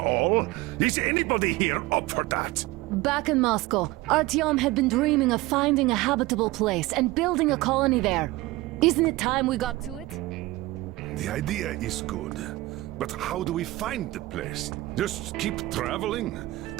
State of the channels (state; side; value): quieter; left; 19.4 dB